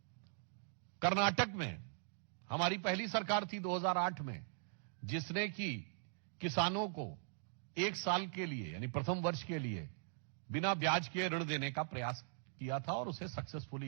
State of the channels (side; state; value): left; silent; digital silence